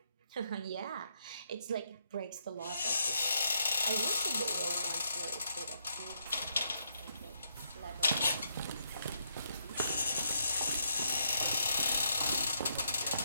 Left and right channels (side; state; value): both; inverted; correlation -0.77